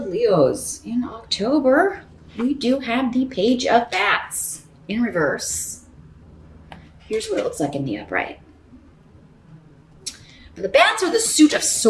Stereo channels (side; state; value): both; identical; correlation 1.00